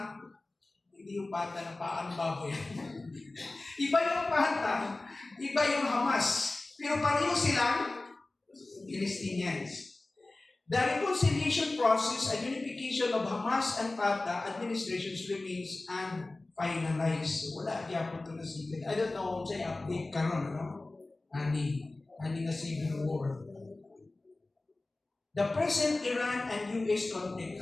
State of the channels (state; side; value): quieter; right; 3.0 dB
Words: hindi yung Fatah na paano baboy. Iba yung Fatah, iba yung Hamas. Pero pareho silang Palestinians. The reconciliation process and unification of Hamas and Fatah administrations remains unfinalized. So, wala diya po ito na civil. I don't know kung sa'yo update karon, no? Ani na civil war. The present Iran and US conflict.